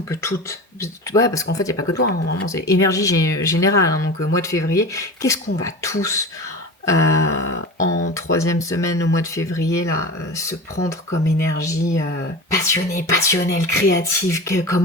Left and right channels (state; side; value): normal; both; correlation 0.31